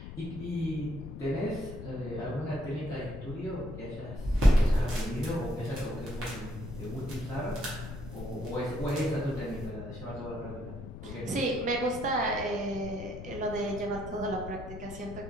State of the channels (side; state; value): left; noise; rumble, 10 dB below the sound